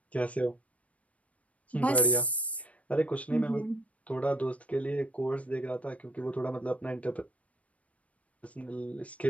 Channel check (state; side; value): late; right; 0.066 ms